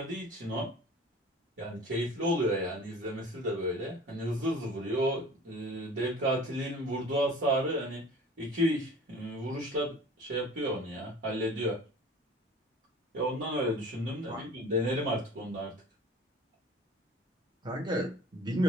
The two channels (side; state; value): both; normal; correlation 0.44